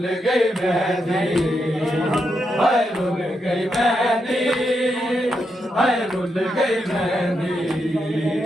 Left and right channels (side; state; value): both; normal; correlation 0.83